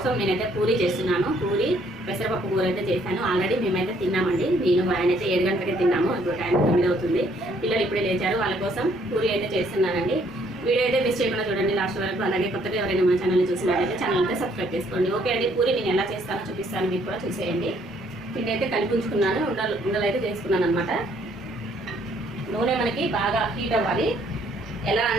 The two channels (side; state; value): both; normal; correlation 0.66